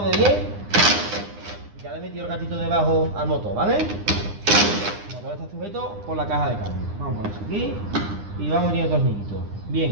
de 10. Ya le he metido el gatito debajo al motor, ¿vale? El motor está sujeto por la caja de cambio. Vamos a poner aquí y vamos metiendo tornillitos.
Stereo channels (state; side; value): late; left; 9.8 ms